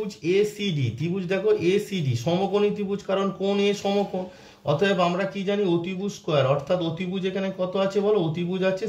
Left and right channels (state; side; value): identical; both; correlation 1.00